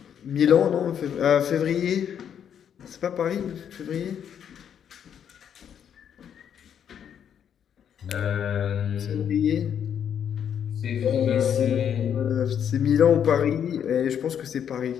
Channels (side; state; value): right; quieter; 8.7 dB